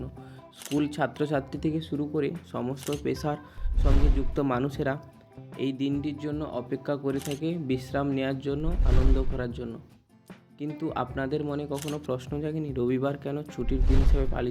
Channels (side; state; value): both; identical; correlation 1.00